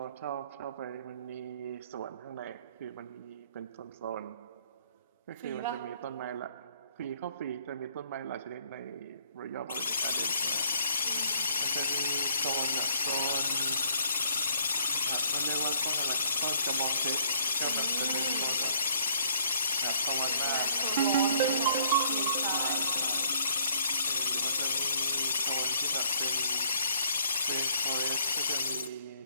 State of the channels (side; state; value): both; inverted; correlation -0.63